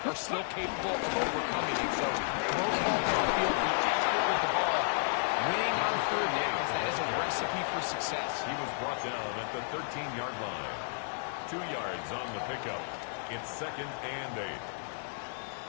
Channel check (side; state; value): right; silent; digital silence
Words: are still capable of overcoming it. So, throw the ball down the field, be accurate with the ball. Winning on third downs, that is a recipe for success. He was brought down at the 13-yard line. 2 yards on the pickup. It's 2nd and 8.